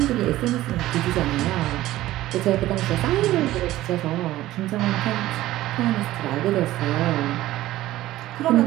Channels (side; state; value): left; quieter; 15.6 dB